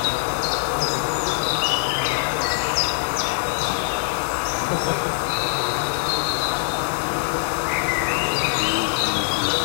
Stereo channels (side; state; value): right; silent; digital silence